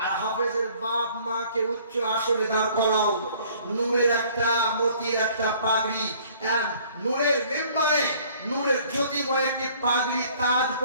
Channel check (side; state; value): both; inverted; correlation -0.55